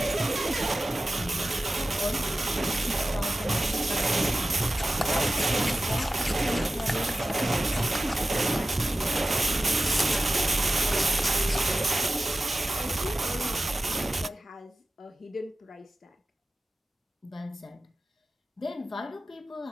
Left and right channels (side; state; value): both; normal; correlation 0.94